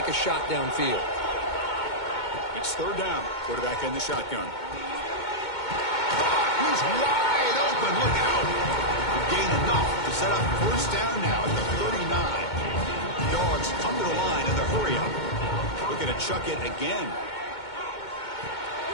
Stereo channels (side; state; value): right; late; 2.2 ms